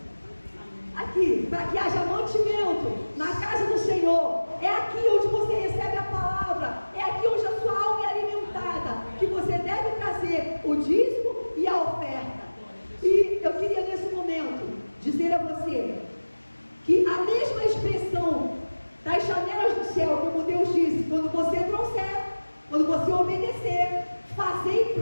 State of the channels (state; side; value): inverted; both; correlation -1.00